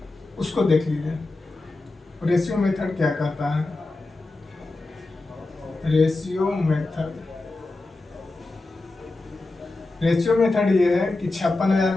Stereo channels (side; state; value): right; quieter; 3.1 dB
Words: उसको देख लीजिए। रेशियो मेथड क्या कहता है, रेशियो मेथड ये है कि 56,000